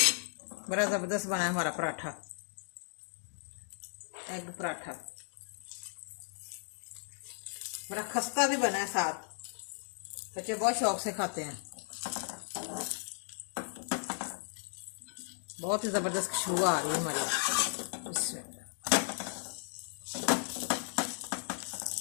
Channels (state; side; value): silent; right; digital silence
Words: बड़ा ज़बरदस्त बना है हमारा पराठा, एग पराठा। बड़ा खस्ता भी बना है साथ, बच्चे बहुत शौक से खाते हैं। बहुत ही ज़बरदस्त खुशबू आ रही है हमारी। इसमें